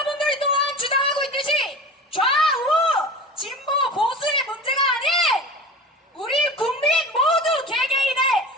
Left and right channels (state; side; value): normal; both; correlation 0.34